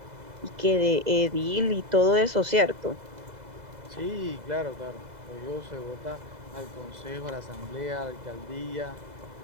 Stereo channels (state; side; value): late; left; 2.0 ms